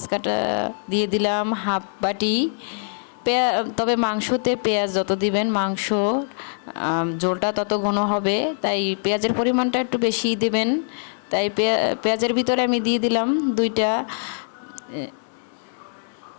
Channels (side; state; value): right; silent; digital silence